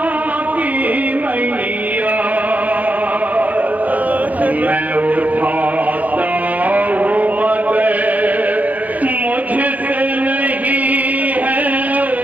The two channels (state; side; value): late; left; 0.077 ms